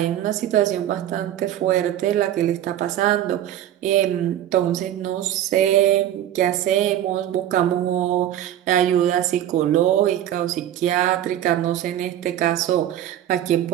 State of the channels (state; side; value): quieter; left; 11.7 dB